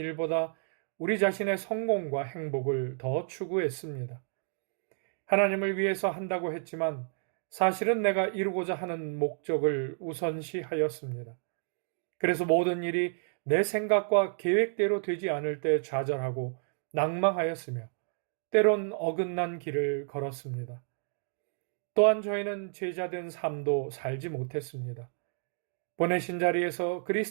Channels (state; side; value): silent; left; 57 dB below the other